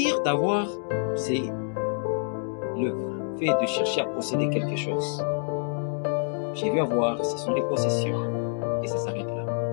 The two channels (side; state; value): right; silent; 60 dB below the other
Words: d'avoir, c'est le fait de chercher à posséder quelque chose. Je veux avoir, ce sont les possessions, et ça s'arrête là.